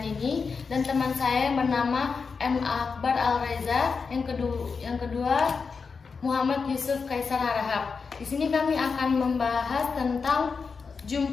Nini dan teman saya yang bernama M. Akbar Al-Reza, yang kedua Muhammad Yusuf Kaisar Harahap. Di sini kami akan membahas tentang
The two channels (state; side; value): quieter; right; 5.1 dB